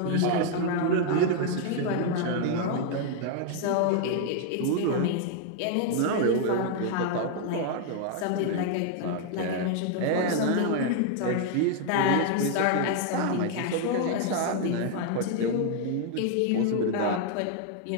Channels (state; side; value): different; both; correlation 0.00